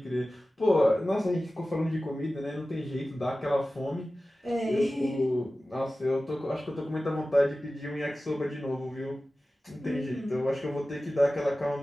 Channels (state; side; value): normal; both; correlation 0.96